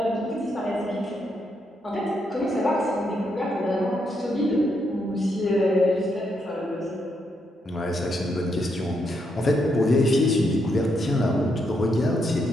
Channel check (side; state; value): both; normal; correlation 0.79